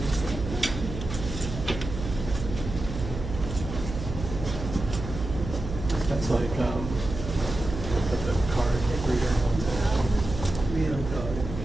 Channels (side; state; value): right; noise; hum, 7 dB below the sound